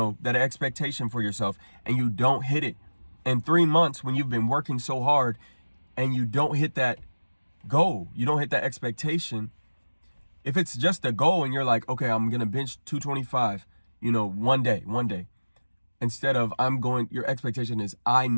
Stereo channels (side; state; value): both; inverted; correlation -1.00